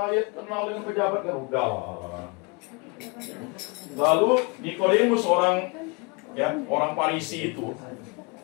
kenal dengan pejabat kan udahlah. Lalu Nikodemus orang Farisi itu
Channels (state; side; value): quieter; right; 29.6 dB